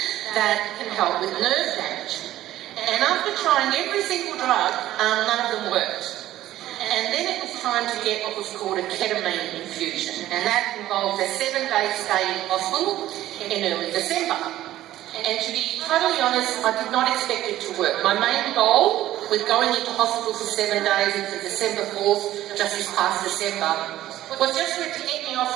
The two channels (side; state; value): left; quieter; 14.1 dB